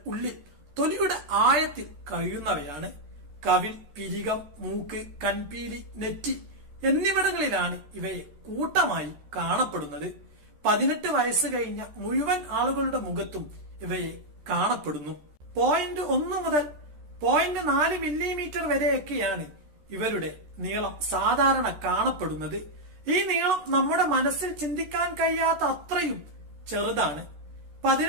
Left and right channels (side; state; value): left; late; 13 ms